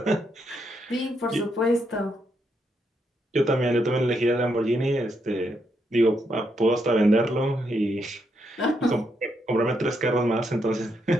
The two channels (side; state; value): both; normal; correlation 0.79